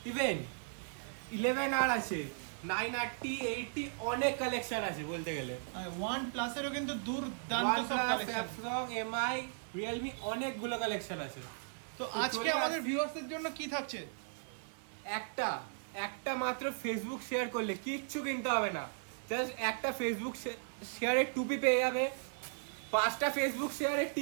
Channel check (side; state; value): left; silent; 53 dB below the other